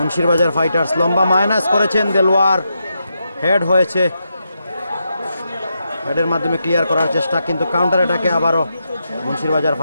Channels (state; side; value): inverted; both; correlation -0.85